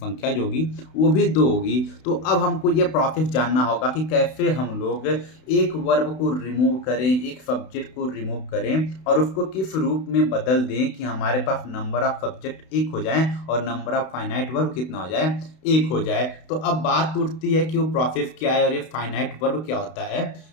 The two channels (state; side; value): late; right; 32 ms